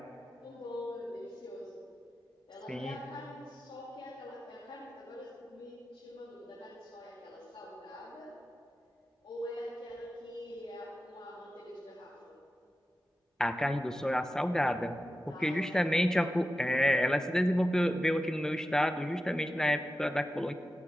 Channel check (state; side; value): normal; both; correlation 0.92